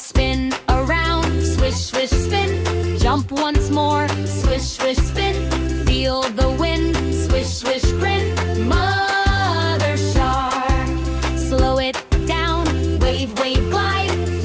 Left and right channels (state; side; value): identical; both; correlation 1.00